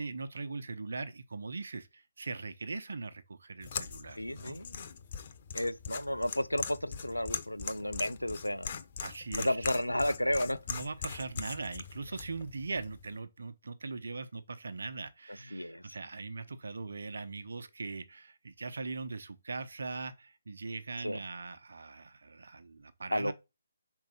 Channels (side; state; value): both; inverted; correlation -0.92